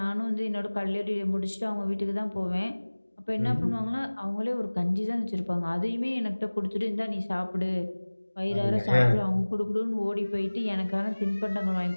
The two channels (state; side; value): inverted; both; correlation -1.00